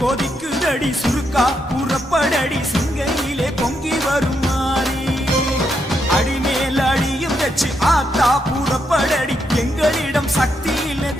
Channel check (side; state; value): both; normal; correlation 0.80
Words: கொதிக்குதடி சுருக்கா புறப்படடி சிங்கையிலே பொங்கி வரும் மாறி அடிமேல் அடியும் வச்சு ஆத்தா புறப்படடி எங்களிடம் சக்தி